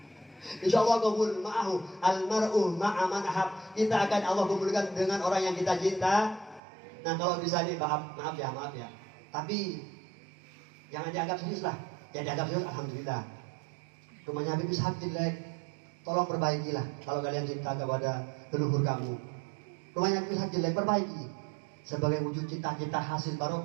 Insyaallah kumpul ma'ahu almar'u ma'a man ahab. Kita akan Allah kumpulkan dengan orang yang kita cinta. Nah kalau bisa nih maaf ya. Tapi jangan dianggap serius lah. Ya dianggap serius alhamdulillah. Rumahnya Habib Ishaq jelek. Tolong perbaikilah kalau kalian cinta kepada leluhur kamu. Rumahnya Habib Ishaq jelek, perbaiki. Sebagai wujud cita-cita hasil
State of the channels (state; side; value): drops out; left; at 6.6 s